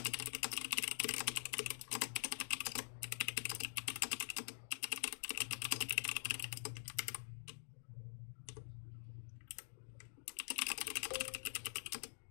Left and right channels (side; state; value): right; silent; digital silence